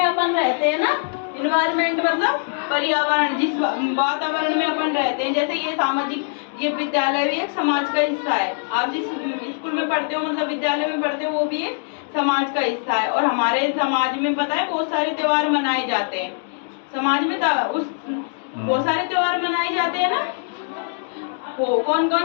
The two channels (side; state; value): right; silent; digital silence